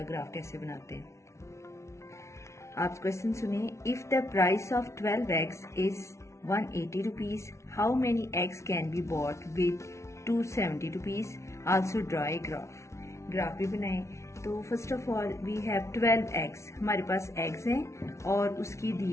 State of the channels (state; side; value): late; right; 0.13 ms